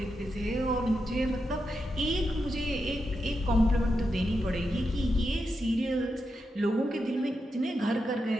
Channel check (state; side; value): normal; both; correlation 0.87